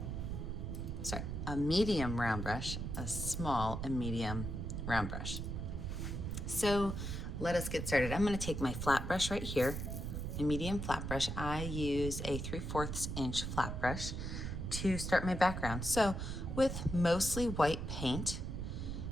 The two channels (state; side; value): noise; right; rumble, 4 dB below the sound